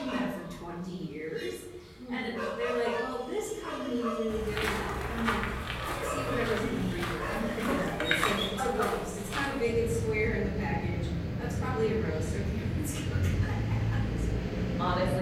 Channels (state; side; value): identical; both; correlation 1.00